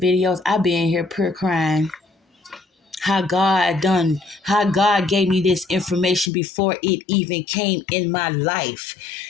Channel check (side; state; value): right; drops out; at 6.3 s